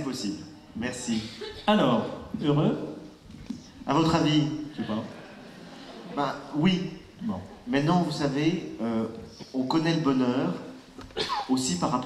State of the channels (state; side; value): identical; both; correlation 1.00